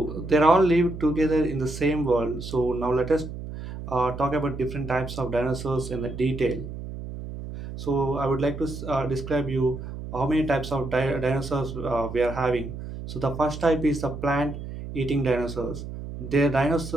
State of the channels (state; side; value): noise; right; hum, 9 dB below the sound